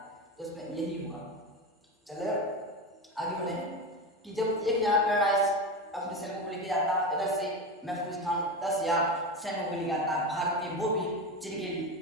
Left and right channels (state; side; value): normal; both; correlation 0.21